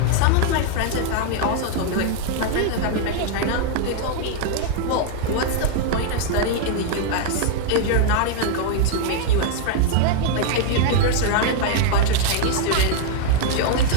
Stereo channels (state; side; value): different; both; correlation 0.00